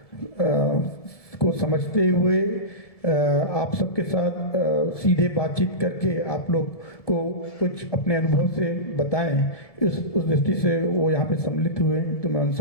को समझते हुए आप सबके साथ सीधे बातचीत करके आप लोग को कुछ अपने अनुभव से बताएं। उस दृष्टि से वो यहाँ पे सम्मिलित हुए, तो मैं उन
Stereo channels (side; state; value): right; late; 1.7 ms